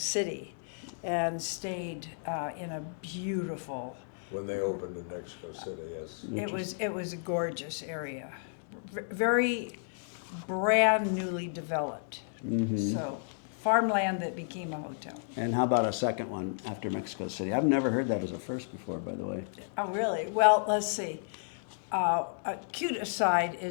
and stayed in a beautiful... When they opened in Mexico City, yes. It was a gorgeous area, very brand newly developed. Mm-hmm. So farmland that became a hotel. And how about a second one after Mexico City? I've never heard that as a first before, by the way. Oh, really? Well, let's see. A cute aside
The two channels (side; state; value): right; silent; digital silence